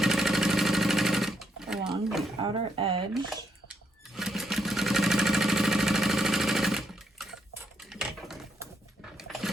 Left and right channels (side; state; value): both; normal; correlation 0.77